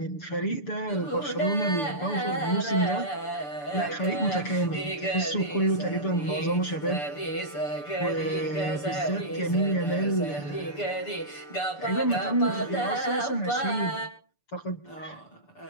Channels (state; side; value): late; right; 6.9 ms